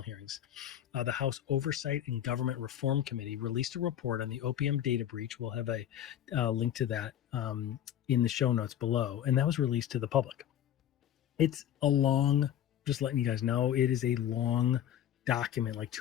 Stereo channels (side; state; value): right; quieter; 10.8 dB